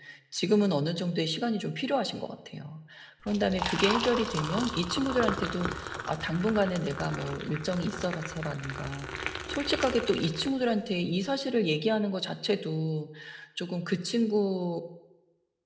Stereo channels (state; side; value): identical; both; correlation 1.00